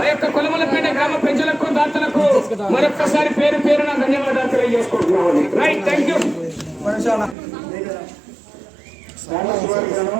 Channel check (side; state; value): left; drops out; at 7.4 s